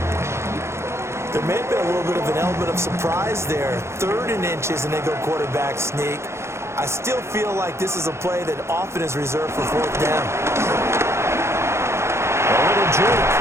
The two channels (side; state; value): left; late; 0.13 ms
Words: There may have been a little bit of an element of surprise there. 3rd and inches, and they go quarterback sneak. I still feel like this is a play that often is reserved for 4th down. A little juke.